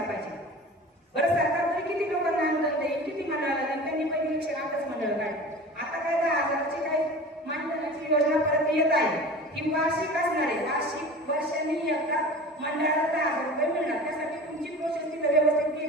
पाहिजे. बरं, सरकार तरी किती लोकांना अनुदान देईल, किती मंडळाला देईल, त्यांनी पहिली 108च मंडळ काढली. आता काय 10,000ची काही मानधनाची योजना परत येत आहे. ही वार्षिक असणार आहे. वार्षिक वर्षांनी एकदा मंडळाला 10,000 रुपये मिळणार. त्यासाठी तुमची प्रोसेस तिथं व्यवस्थित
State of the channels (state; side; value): normal; both; correlation 0.37